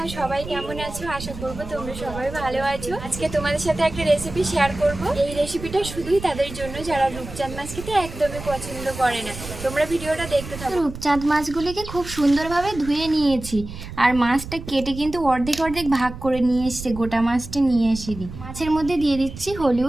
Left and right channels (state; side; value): noise; right; rumble, 11 dB below the sound